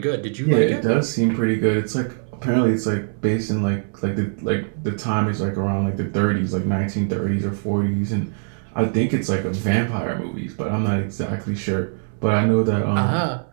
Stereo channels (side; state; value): left; silent; 64 dB below the other